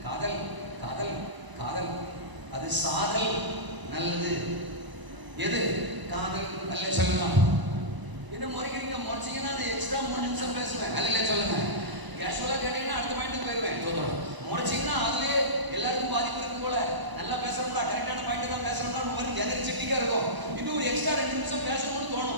காதல் காதல் காதல். அது சாதல் நல்லது. எது காதல்? அல்ல சொல்லலாம். என்ன முறைக்கிறீங்க? முறைச்சிங்கன்னா எக்ஸ்ட்ரா 3 நிமிஷம் பேசுவேன். அல்ல சொல்லுங்க. கேஷுவலா கேட்டீங்கன்னா அடுத்த பாயிண்ட் போயிருவேன். முறைச்சிங்கன்னா அதுலயே எல்லாருக்கும் பாதிப்பு இருக்கும் போல. நல்லா பேசுறோம்டா, கரெக்டான பாயிண்ட் தான் பேசுறோம்டா, உங்களுக்கு எனர்ஜெட்டிக்கா இருக்கும். இன்னும் ஒரு எக்ஸ்ட்ரா 2 நிமிஷம் பேசணும்னு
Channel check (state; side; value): late; left; 1.0 ms